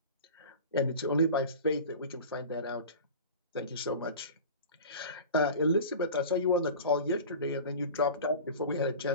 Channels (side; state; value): both; inverted; correlation -0.35